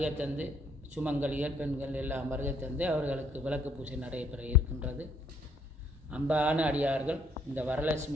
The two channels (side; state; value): both; normal; correlation 0.66